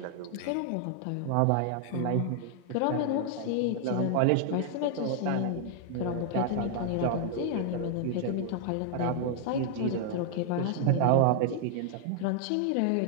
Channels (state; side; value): different; both; correlation 0.00